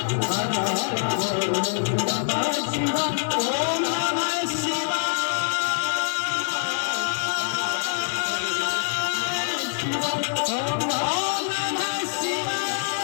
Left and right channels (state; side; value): silent; right; digital silence